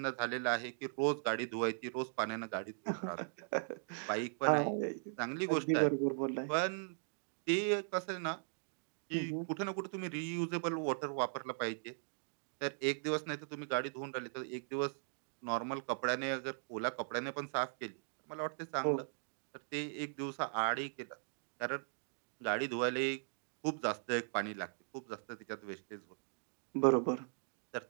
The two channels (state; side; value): silent; left; digital silence